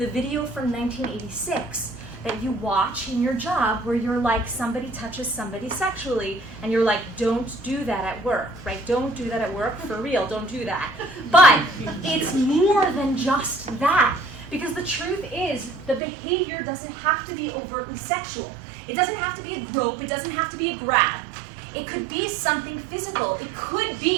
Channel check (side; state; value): left; drops out; at 16.0 s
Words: video from 1986 that you watch in your job where you're like, somebody touches somebody sexually, and you're like, don't do that at work, right? Don't do that at work, for real, don't do that. But it's more than just that, because the truth is, the behavior doesn't have to be overtly sexual. It doesn't have to be a grope, it doesn't have to be a grab. It could be something physical. It could